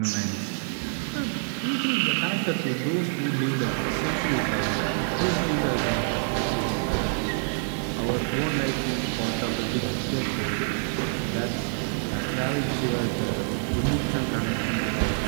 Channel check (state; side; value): silent; left; 60 dB below the other